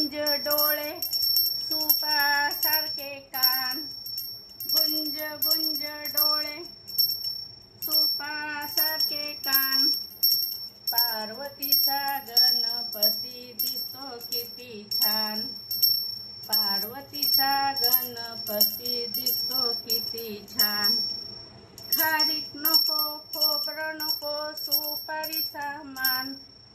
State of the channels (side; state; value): both; identical; correlation 1.00